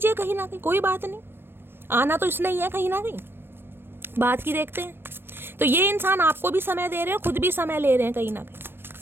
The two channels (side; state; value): left; late; 0.10 ms